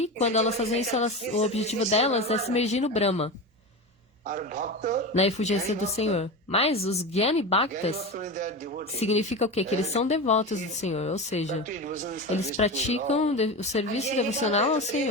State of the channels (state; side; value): normal; both; correlation 0.24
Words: quando elas fazem isso, o objetivo delas é se imergir no Brahma, na efulgência do Senhor. Mas os Gyani Bhaktas significa o quê? Que eles são devotos do Senhor, ou seja, eles praticam o serviço devocional ao